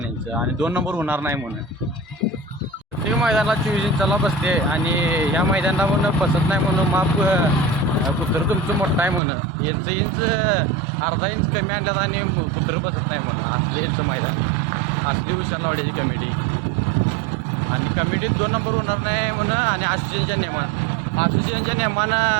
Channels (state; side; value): drops out; left; at 9.2 s